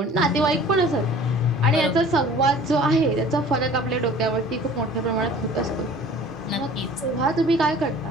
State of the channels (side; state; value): both; normal; correlation 0.47